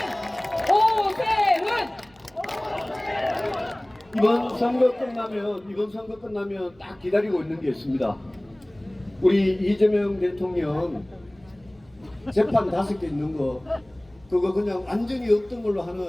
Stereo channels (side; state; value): right; noise; hum, 29 dB below the sound